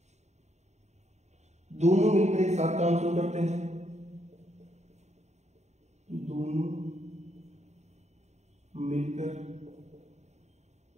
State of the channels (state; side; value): late; left; 0.33 ms